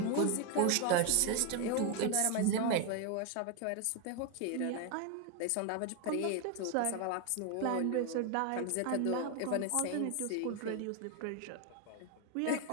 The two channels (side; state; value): both; different; correlation 0.01